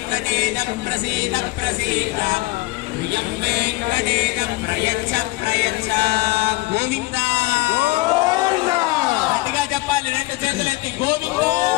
ప్రసీద ప్రసీద ప్రియం వెంకటేశ ప్రయచ్చ ప్రయచ్చ. గోవింద గట్టిగా చెప్పాలి, రెండు చేతులెత్తి గోవింద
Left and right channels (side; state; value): right; quieter; 21.1 dB